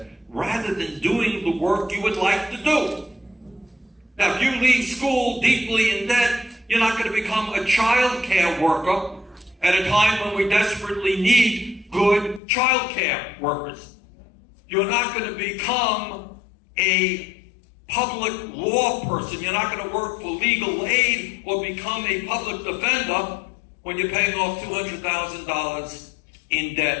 rather than doing the work you would like to do. Now, if you leave school deeply in debt, you're not going to become a child care worker at a time when we desperately need good child care workers. You're not going to become a public law person. You're not going to work for legal aid or become a public defender when you're paying off $200,000 in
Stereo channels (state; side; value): drops out; right; at 12.4 s